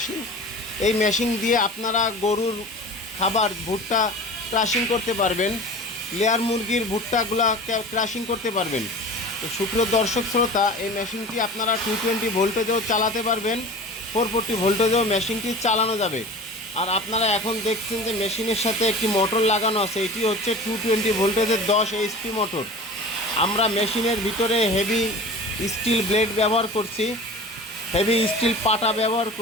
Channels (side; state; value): both; normal; correlation 0.37